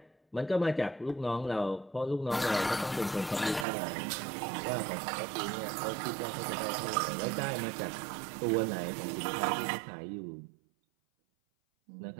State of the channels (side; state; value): left; drops out; at 3.7 s